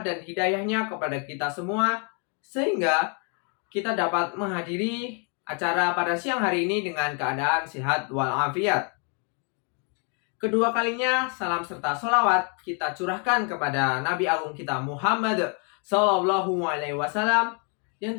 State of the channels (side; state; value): right; quieter; 38.4 dB